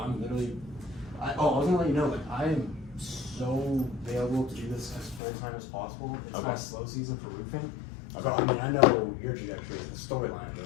literally. I was gonna let you know, like, I am so available to do this as full time as possible. It's my slow season for roofing. Okay. So I mean, I know your trajectory, the storyline of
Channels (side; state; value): right; drops out; at 5.2 s